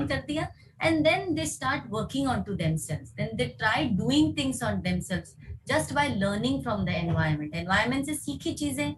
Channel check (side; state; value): both; identical; correlation 1.00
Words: कर दिया and then they start working onto themselves, then they try doing things on themselves just by learning from the environment से सीखी चीजें